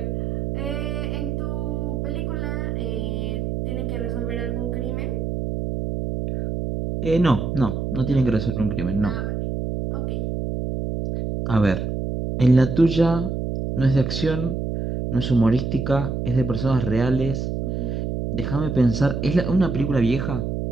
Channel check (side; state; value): right; noise; hum, 2 dB below the sound